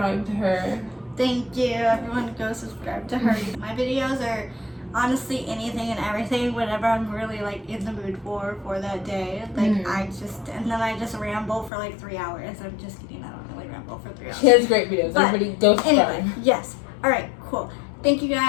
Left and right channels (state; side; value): drops out; right; at 11.7 s